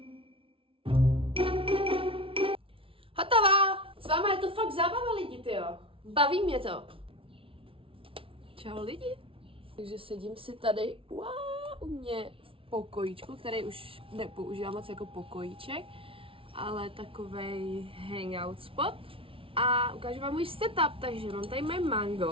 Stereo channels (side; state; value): left; late; 0.26 ms